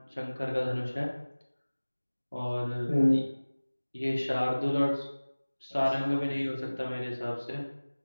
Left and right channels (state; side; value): inverted; both; correlation -1.00